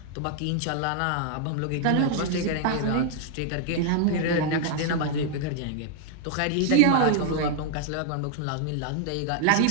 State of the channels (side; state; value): both; different; correlation 0.00